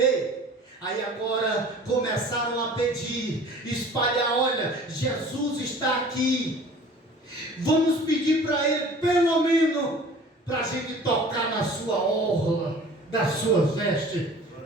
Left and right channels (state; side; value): normal; both; correlation 0.46